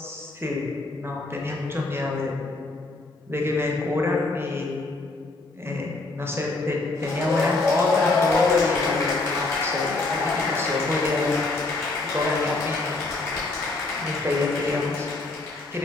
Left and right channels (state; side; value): quieter; right; 3.2 dB